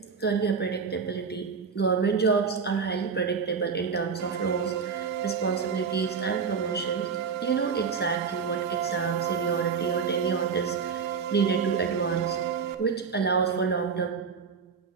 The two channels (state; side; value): quieter; left; 5.9 dB